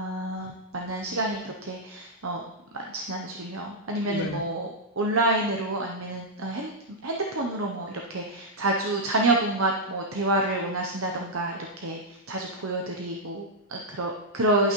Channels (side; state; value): both; normal; correlation -0.05